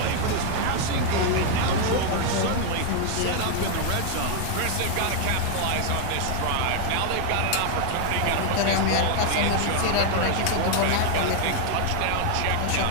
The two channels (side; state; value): both; different; correlation 0.00